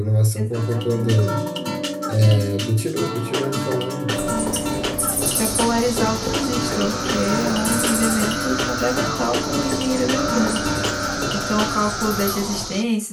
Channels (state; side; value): identical; both; correlation 1.00